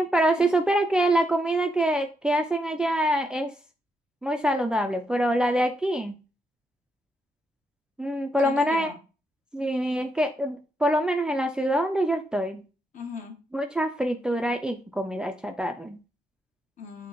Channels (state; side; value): normal; both; correlation 0.80